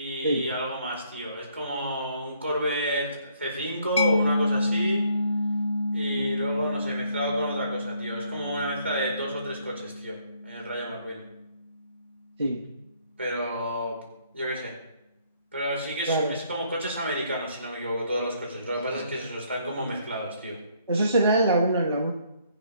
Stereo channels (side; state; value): both; inverted; correlation -0.67